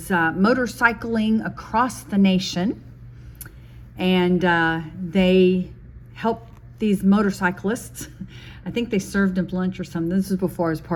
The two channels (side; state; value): both; identical; correlation 1.00